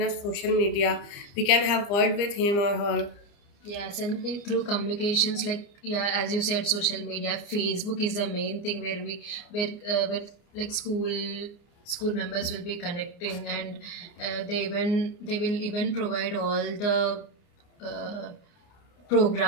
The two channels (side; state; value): right; late; 29 ms